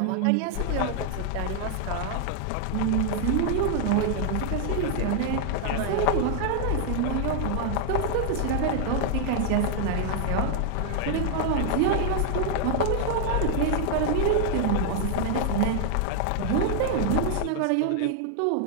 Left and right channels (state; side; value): different; both; correlation 0.00